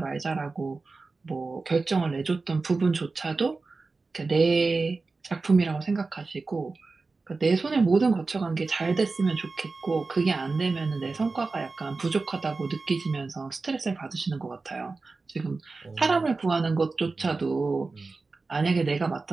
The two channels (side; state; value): left; quieter; 3.9 dB